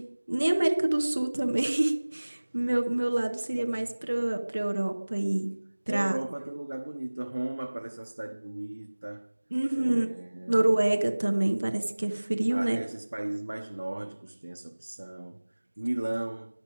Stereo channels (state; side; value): inverted; both; correlation -1.00